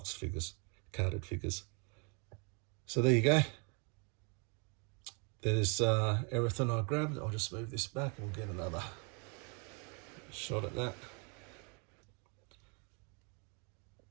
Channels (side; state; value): left; quieter; 35.2 dB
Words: figures, carded figures. So there you go. There's everything I grabbed. I'll just move this back and we'll get another shot at that.